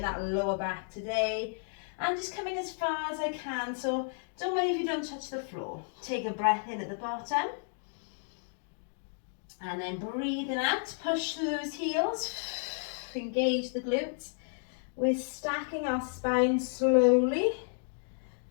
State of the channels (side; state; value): right; silent; digital silence